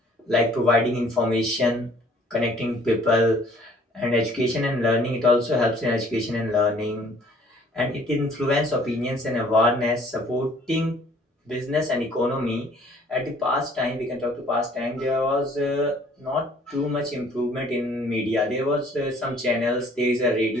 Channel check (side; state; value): both; normal; correlation 0.57